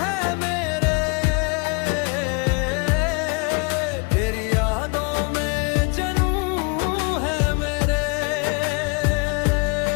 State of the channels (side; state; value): right; quieter; 31.7 dB